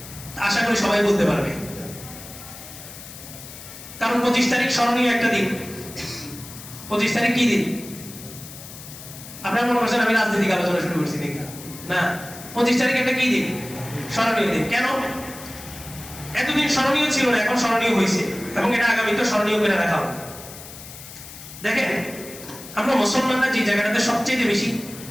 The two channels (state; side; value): noise; left; hiss, 15 dB below the sound